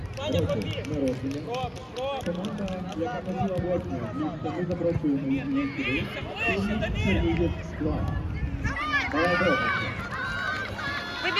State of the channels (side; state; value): both; identical; correlation 1.00